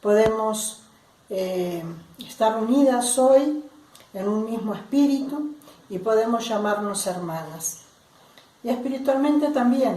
podemos estar unidas hoy en un mismo espíritu y podemos llamarnos hermanas. Y espiritualmente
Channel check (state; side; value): identical; both; correlation 1.00